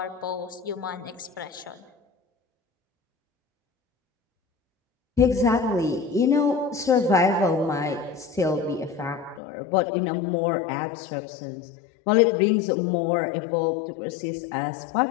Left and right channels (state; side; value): drops out; right; at 9.4 s